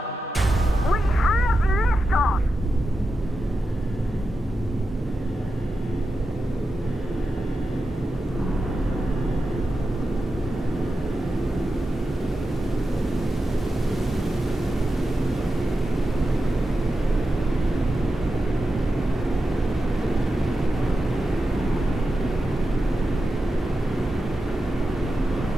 We have liftoff!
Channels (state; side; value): normal; both; correlation 0.90